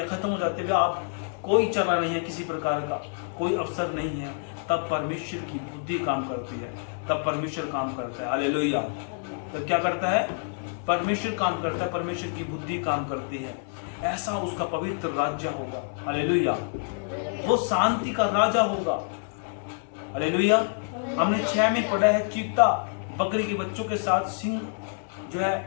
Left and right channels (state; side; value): silent; right; 60 dB below the other